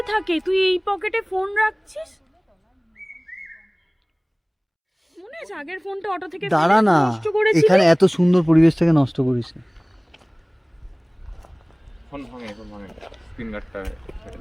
থাকে? তুই এই পকেটে ফোন রাখছিস? মনে আছে আগের ফোনটা অটো থেকে দাঁড়া ফেলে না, নষ্ট করেছিলি? এখানে এত সুন্দর পরিবেশটাকে নষ্ট করিস না। ফোন ভাঙে, ফোন ভাঙে, স্ক্রিন গার্ডটা ছেড়ে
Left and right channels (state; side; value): identical; both; correlation 1.00